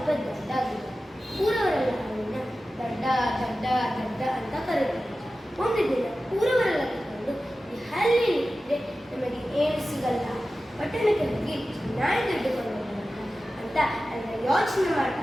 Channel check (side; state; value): both; normal; correlation 0.94